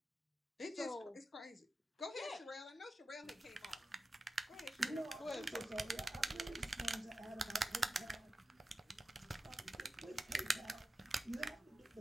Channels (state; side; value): normal; both; correlation 0.93